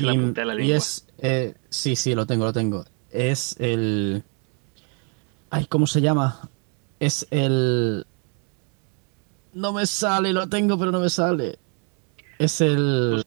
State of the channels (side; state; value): left; quieter; 39.6 dB